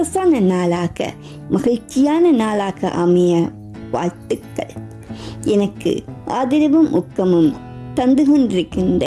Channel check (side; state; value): both; identical; correlation 1.00